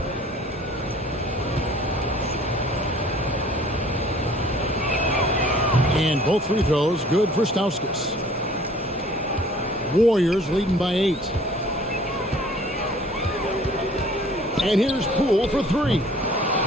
And both free throws good for Stauskas. Warriors leading by 8. And here's Poole for 3.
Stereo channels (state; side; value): normal; both; correlation 0.52